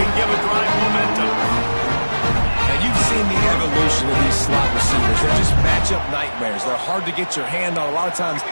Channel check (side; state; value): both; inverted; correlation -1.00